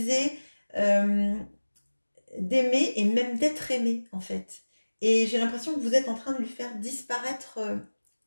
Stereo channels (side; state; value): both; inverted; correlation -1.00